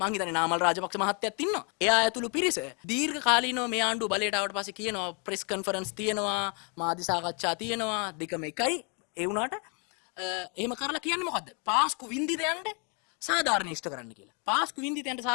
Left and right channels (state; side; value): quieter; right; 35.9 dB